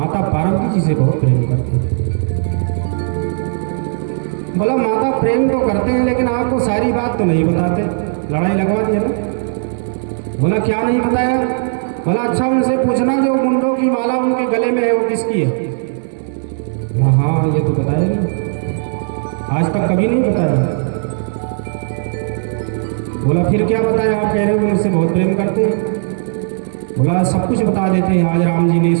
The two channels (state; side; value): silent; left; 68 dB below the other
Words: पार्वती जी से बहुत प्रेम करते हैं। बोला माता प्रेम तो करते हैं लेकिन आपको सारी बात तो नहीं बताते, लड़ाई लगवा दी है ना। बोला क्या नहीं बताया? बोला अच्छा उनसे पूछना जो मुंडों की माला उनके गले में है वो किसकी है? हाँ ये तो बताया नहीं, आज तक कभी नहीं बताया। बोला फिर क्या बताया? आप कह रहे हो मुझसे बहुत प्रेम करते हैं। बोला सब कुछ बता देते हैं, आज राम जी ने इस